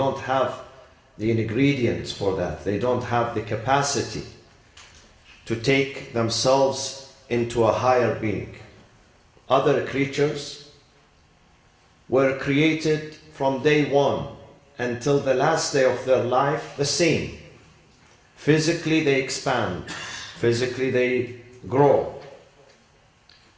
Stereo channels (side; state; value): both; identical; correlation 1.00